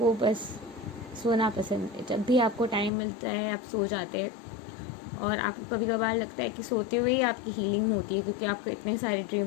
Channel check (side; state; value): right; drops out; at 2.9 s